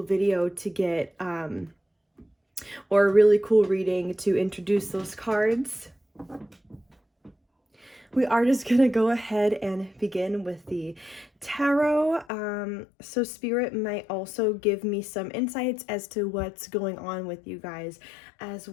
video to get, or a really cool reading to introduce those cards. We are just going to go ahead and begin with the tarot. So Spirit might also give me some insights as to what's going on with you guys, as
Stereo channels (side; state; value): right; drops out; at 12.2 s